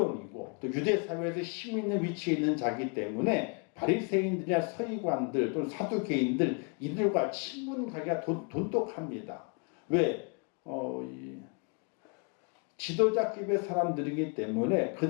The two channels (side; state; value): right; quieter; 36.8 dB